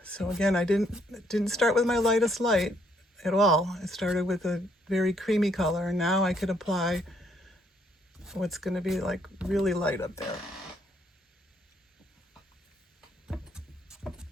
So again, I didn't start with my lightest light at all. I started with a very creamy color, and now I could apply what's going to be like really light up there.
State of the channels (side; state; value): both; normal; correlation 0.70